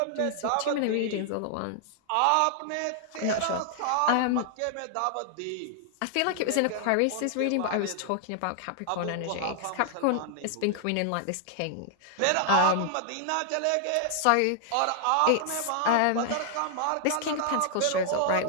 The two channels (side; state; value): both; different; correlation -0.01